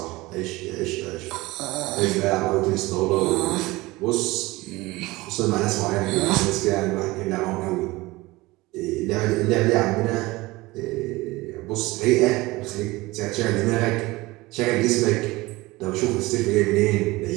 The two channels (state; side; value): quieter; left; 20.9 dB